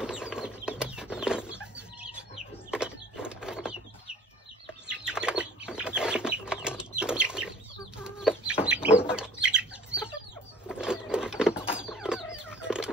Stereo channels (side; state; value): both; normal; correlation 0.48